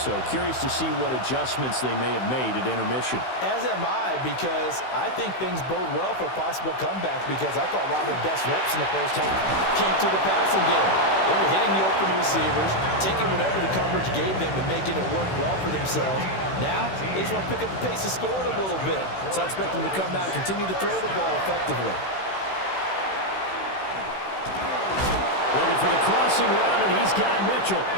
curious to see what adjustments they may have made at intermission. As am I, because I think things bode well for a possible comeback, because I thought a lot of their best reps in the first half came through the passing game. They were hitting the open receivers, taking whatever the coverage gave them and making it work well for themselves. Now, they just want to pick up the pace of scoring a little bit. So I expect them to come out and continue to throw the ball effectively. Looking for the crossing route, and he's got Mitchell.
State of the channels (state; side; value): late; right; 16 ms